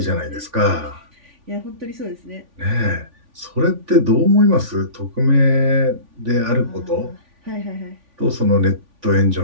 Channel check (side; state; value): left; late; 3.5 ms